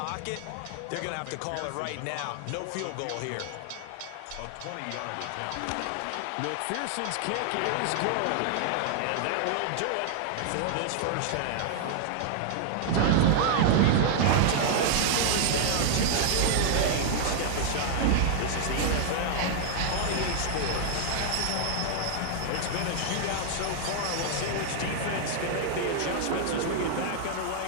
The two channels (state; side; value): different; both; correlation 0.00